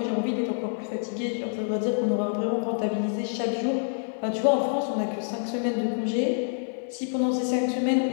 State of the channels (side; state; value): right; silent; digital silence